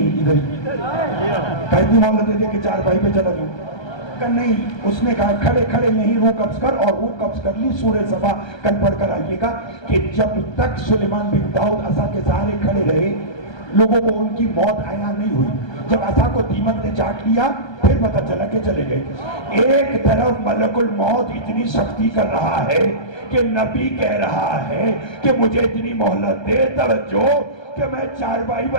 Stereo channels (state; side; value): late; right; 1.2 ms